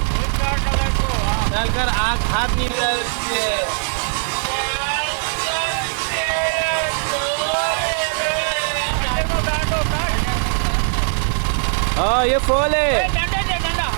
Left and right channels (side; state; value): left; silent; digital silence